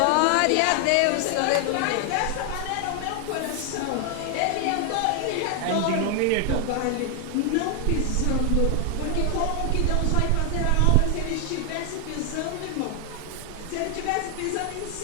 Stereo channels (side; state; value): both; different; correlation 0.00